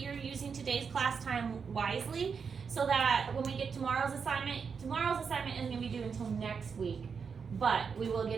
using today's class time wisely so that when we get tomorrow's assignment isn't going to be due until next week, but we will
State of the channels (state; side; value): quieter; left; 6.0 dB